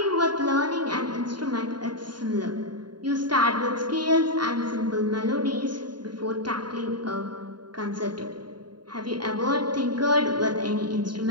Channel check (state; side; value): late; left; 0.71 ms